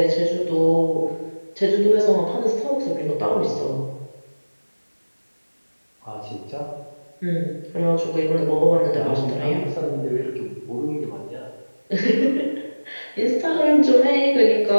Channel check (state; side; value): inverted; both; correlation -1.00